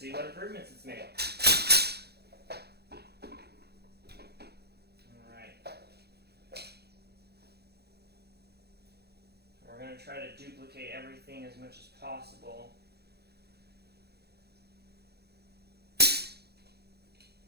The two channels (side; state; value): left; late; 0.47 ms